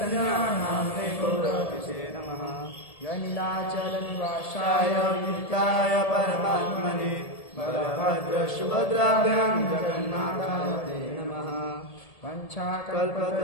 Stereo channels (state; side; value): late; right; 1.7 ms